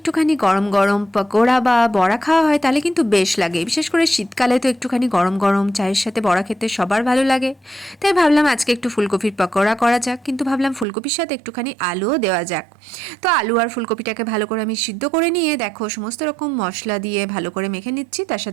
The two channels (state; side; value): drops out; left; at 10.9 s